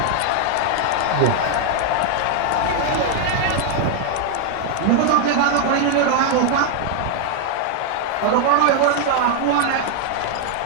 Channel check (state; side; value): different; both; correlation 0.00